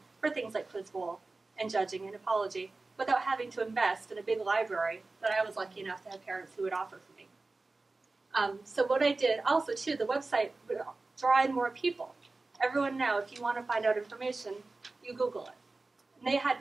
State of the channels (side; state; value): left; quieter; 3.4 dB